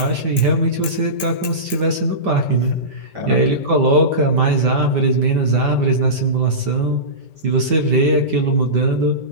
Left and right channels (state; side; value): late; left; 5.1 ms